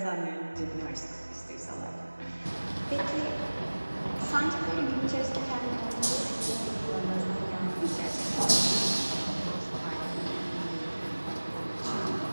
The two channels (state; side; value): inverted; both; correlation -1.00